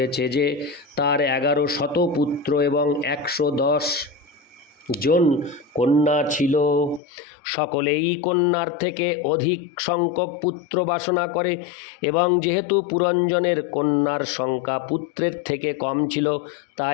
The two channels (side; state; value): right; drops out; at 7.0 s